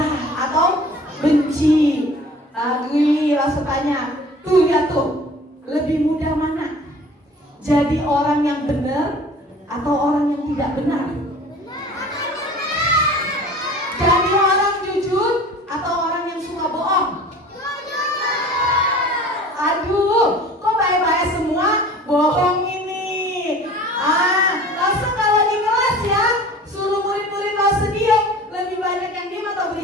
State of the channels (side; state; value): both; normal; correlation 0.44